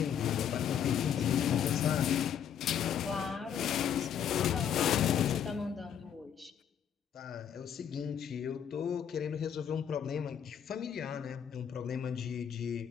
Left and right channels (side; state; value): right; quieter; 8.7 dB